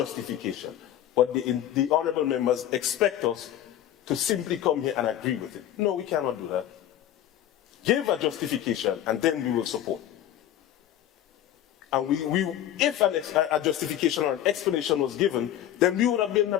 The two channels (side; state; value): right; quieter; 11.8 dB